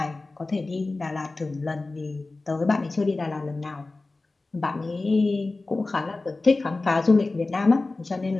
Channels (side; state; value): right; quieter; 3.3 dB